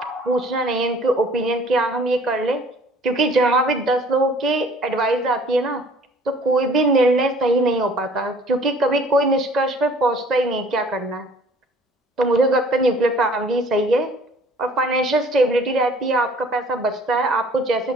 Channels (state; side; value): normal; both; correlation 0.53